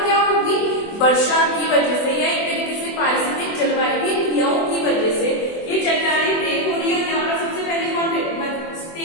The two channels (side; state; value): right; late; 24 ms